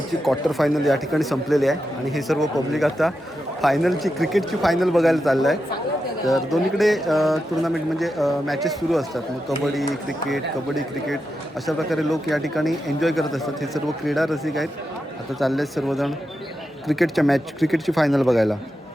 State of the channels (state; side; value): normal; both; correlation 0.88